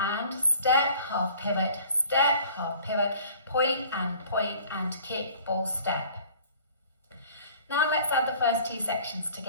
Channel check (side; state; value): both; inverted; correlation -0.50